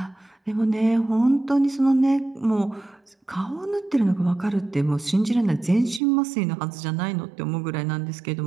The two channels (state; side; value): drops out; left; at 6.0 s